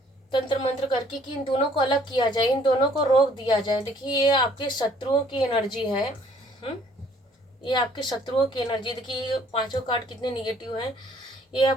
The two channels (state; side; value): normal; both; correlation 0.60